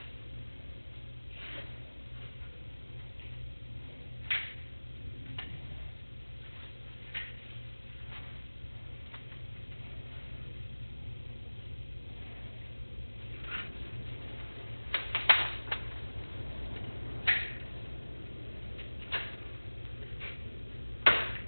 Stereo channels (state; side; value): inverted; both; correlation -1.00